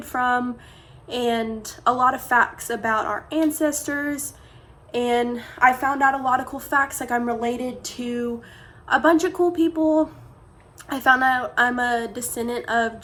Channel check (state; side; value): identical; both; correlation 1.00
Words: from, and a lot of facts about our ancestors. And I found out a lot of cool facts, like I'm related to a bunch of cool people. I found out I'm a descendant of